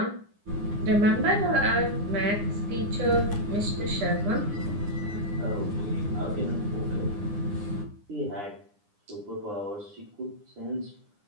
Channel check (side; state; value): left; late; 9.8 ms